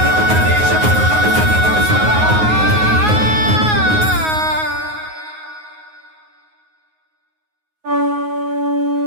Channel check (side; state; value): left; late; 9.5 ms